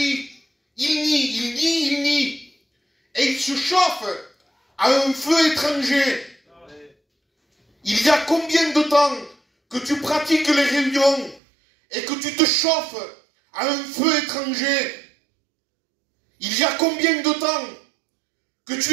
Il nie. Et il se chauffe à un feu étranger. Il y a combien de temps que tu pratiques les réunions et que tu te chauffes à un feu étranger? Il y a combien de temps que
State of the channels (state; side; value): drops out; left; at 11.4 s